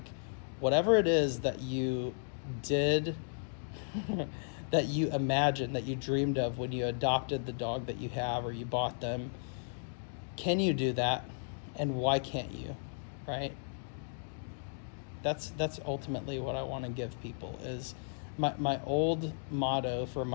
whatever it is that you did, that you imagined, that you dreamed of when you adopted the dog that you have or you bought them, can you do that? And why can't you, right? That's ultimately what I want to give people. Is my old motto for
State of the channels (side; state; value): right; silent; digital silence